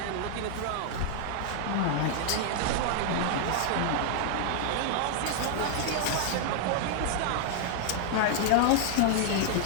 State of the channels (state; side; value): different; both; correlation -0.01